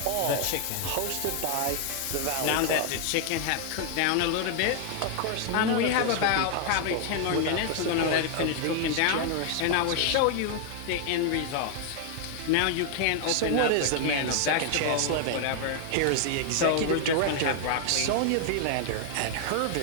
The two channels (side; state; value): both; different; correlation 0.00